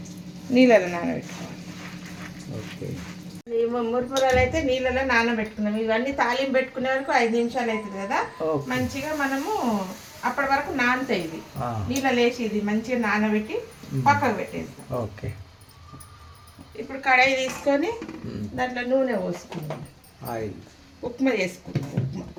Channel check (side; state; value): both; identical; correlation 1.00